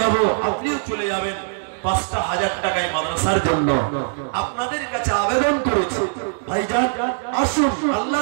যাব, আপনিও চলে যাবেন। 5000 টাকায় মাদ্রাসার জন্য আপনাদের কাছে আবেদন করেছি। ভাইজান আসুন,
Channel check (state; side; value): silent; left; digital silence